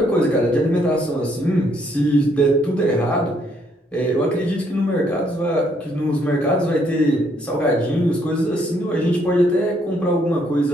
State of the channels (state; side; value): normal; both; correlation 0.70